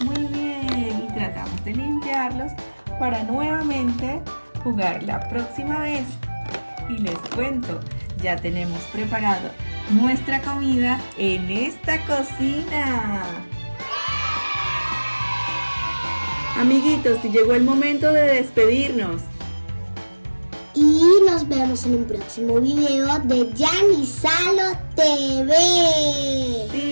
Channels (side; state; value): both; inverted; correlation -1.00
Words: muy bien y tratamos de limpiarlos para nuevamente jugar la próxima vez. Y les cuento, ya tenemos preparado nuestra comida en esta cocina. Amiguitos, llegó el momento de despedirnos. Y nos vemos en un próximo video de Yanni Salo TV.